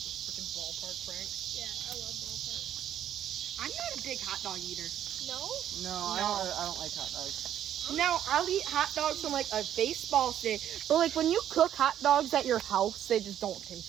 freaking ballpark, Frank. Yeah, I love ballpark. I'm not a big hot dog eater. No? No, I don't like hot dogs. Now, I'll eat hot dogs from like a baseball stand, but like when you cook hot dogs at your house, they just don't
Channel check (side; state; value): left; quieter; 10.6 dB